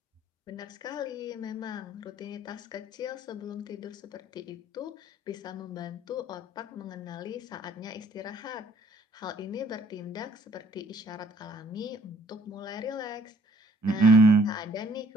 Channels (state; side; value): normal; both; correlation 0.60